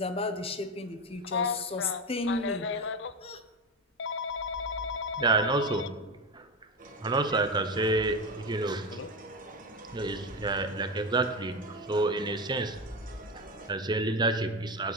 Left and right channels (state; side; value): normal; both; correlation 0.18